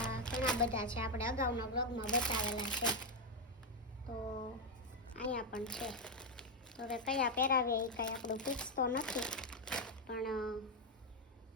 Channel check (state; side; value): normal; both; correlation 0.03